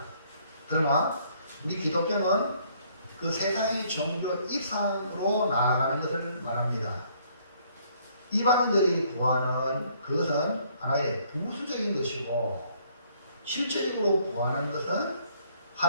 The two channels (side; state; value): both; inverted; correlation -0.64